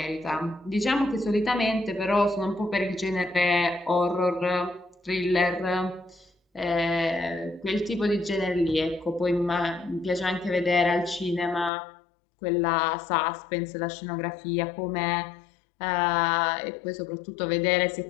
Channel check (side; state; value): right; drops out; at 11.7 s